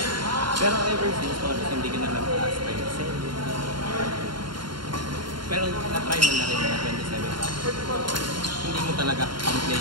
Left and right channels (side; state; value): left; late; 0.72 ms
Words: Pero ever since, Morris, hindi ka na nag-last time. Pero na-try mo na rin mga 27 hours. Hindi mo talaga ang